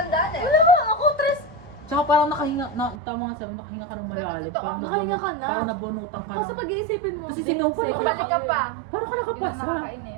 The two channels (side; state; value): left; drops out; at 3.0 s